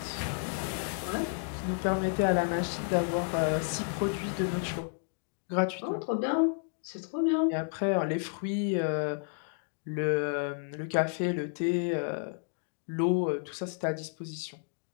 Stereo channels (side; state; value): right; silent; 56 dB below the other